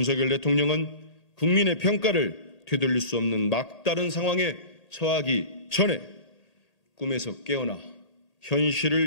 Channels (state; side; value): late; right; 1.8 ms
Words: 대통령은 국민의 평가를 되돌릴 수 없는 막다른 상황에 처하기 전에 꿈에서 깨어나